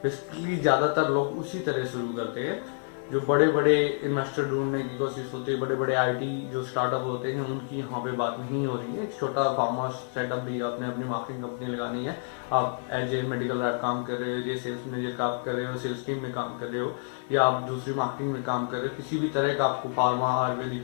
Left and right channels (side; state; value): right; silent; digital silence